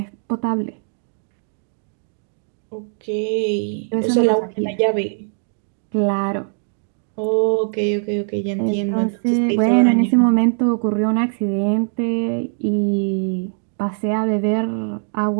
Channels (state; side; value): silent; left; 63 dB below the other